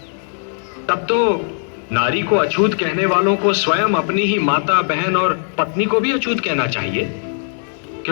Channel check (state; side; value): silent; right; 57 dB below the other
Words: तब तो नारी को अछूत कहने वालों को स्वयं अपनी ही माता, बहन और पत्नी को भी अछूत कहना चाहिए,